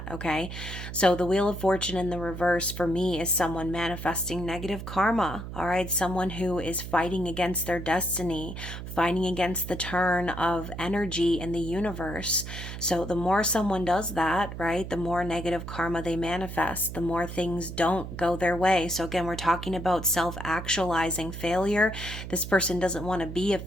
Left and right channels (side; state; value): right; noise; hum, 9 dB below the sound